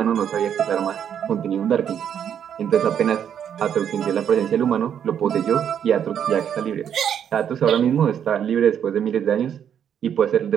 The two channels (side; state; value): left; quieter; 8.8 dB